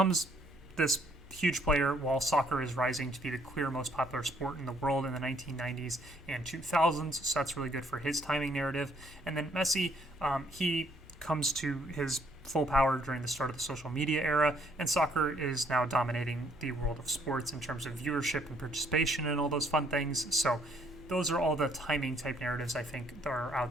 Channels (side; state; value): both; normal; correlation 0.67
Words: this huge player while soccer is rising to be the clear most popular sport in the world in the 1990s and 2000s, so that's really good for his timing narrative. And then Messi, he comes to his full power during the start of the social media era, and soccer is now dominating the world of sports in terms of viewership and participation and all those fun things. So those are all the timing type narratives I think that are